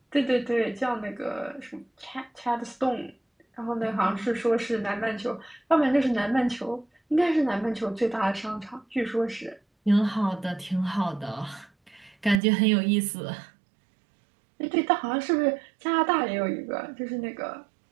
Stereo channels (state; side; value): drops out; left; at 12.4 s